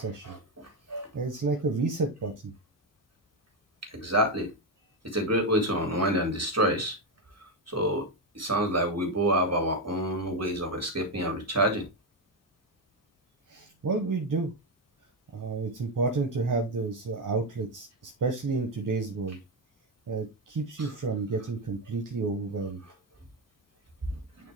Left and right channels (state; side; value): normal; both; correlation 0.09